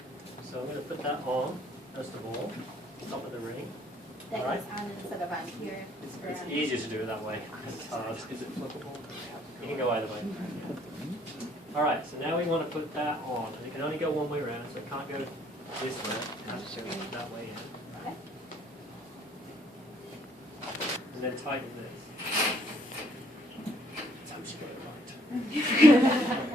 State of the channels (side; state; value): both; normal; correlation 0.64